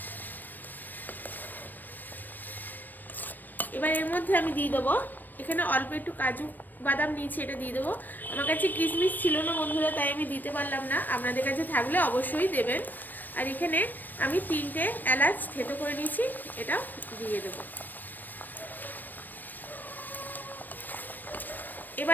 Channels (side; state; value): right; late; 0.089 ms